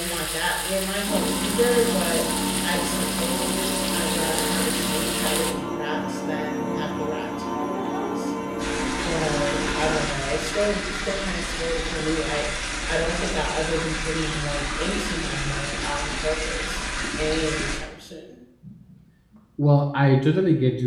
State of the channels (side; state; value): both; identical; correlation 1.00